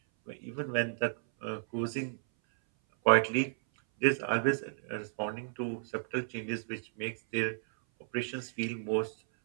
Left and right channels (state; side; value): silent; left; 56 dB below the other